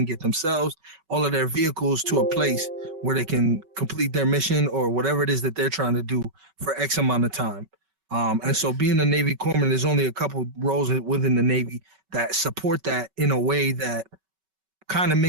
get themselves, all of their vehicles, to a place where they can complete their mission or whatever it is that they're trying to do for X amount of time. And so being a Navy corpsman, there's only a couple roles within the Navy that support that in a way that kind of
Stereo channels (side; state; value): left; late; 5.3 ms